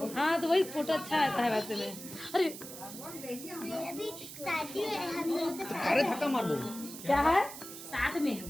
हाँ तो वही फोटो अच्छा आता है वैसे में. अरे अरे धक्का मार दो. क्या है साथ में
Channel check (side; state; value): right; noise; hiss, 12 dB below the sound